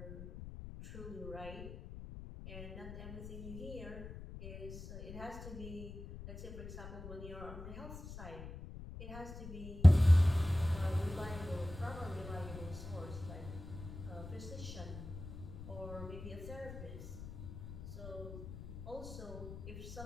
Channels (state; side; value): noise; left; rumble, 11 dB below the sound